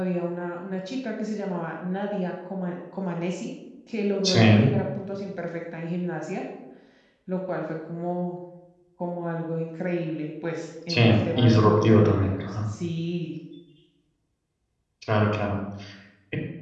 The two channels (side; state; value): both; identical; correlation 1.00